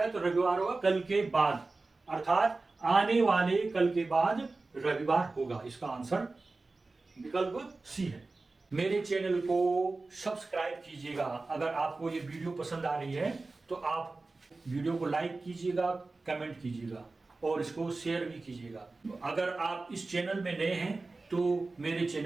है, तो रविवार होगा कल के बाद, अर्थात आने वाले कल के बाद रविवार होगा। इसका आंसर विकल्प सी है। मेरे चैनल को सब्सक्राइब कीजिएगा। अगर आपको ये वीडियो पसंद आ रही है तो आप वीडियो को लाइक कीजिएगा, कमेंट कीजिएगा और इसको शेयर भी कीजिएगा। अगर आप इस चैनल में नए हैं तो मेरे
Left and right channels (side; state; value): left; quieter; 3.5 dB